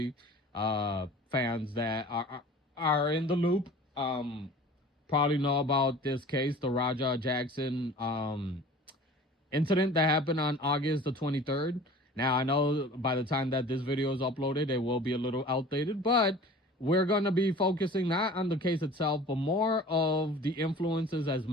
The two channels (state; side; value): normal; both; correlation 0.43